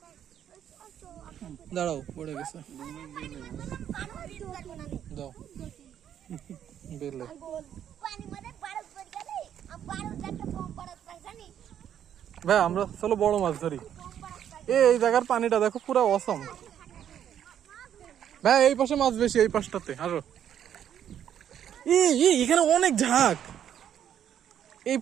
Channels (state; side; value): quieter; left; 9.8 dB